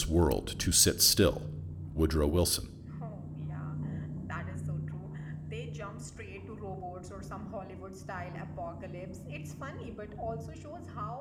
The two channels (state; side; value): identical; both; correlation 1.00